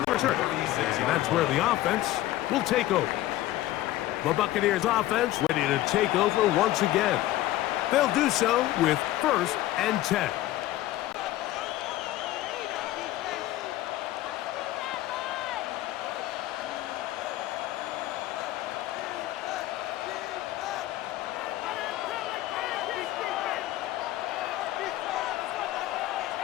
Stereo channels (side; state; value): right; quieter; 15.3 dB